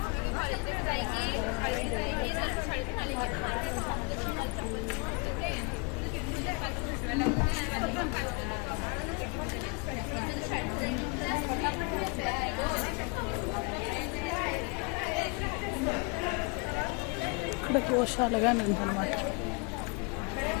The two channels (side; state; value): right; quieter; 31.6 dB